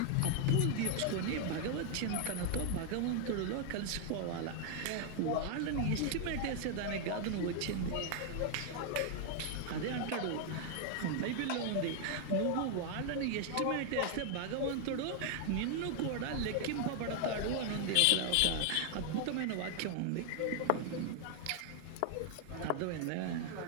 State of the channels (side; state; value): both; different; correlation 0.00